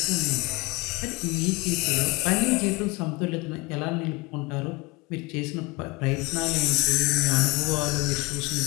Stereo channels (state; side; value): quieter; right; 24.2 dB